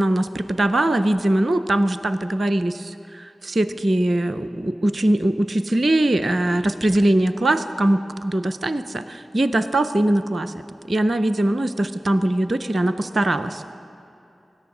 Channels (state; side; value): normal; both; correlation 0.96